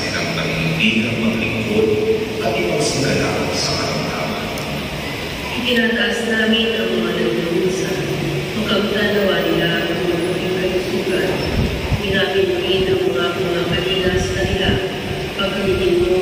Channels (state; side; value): identical; both; correlation 1.00